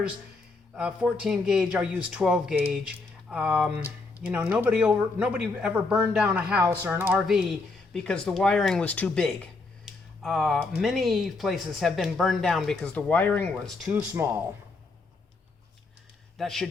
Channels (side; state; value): right; quieter; 3.7 dB